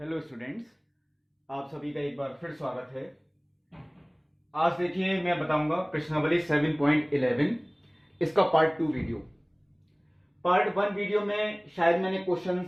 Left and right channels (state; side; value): identical; both; correlation 1.00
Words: students, आप सभी का एक बार फिर स्वागत है। आज देखिए मैं बताऊंगा प्रश्नावली 7.11 इसका पार्ट 2 वीडियो। पार्ट 1 वीडियो में शायद मैंने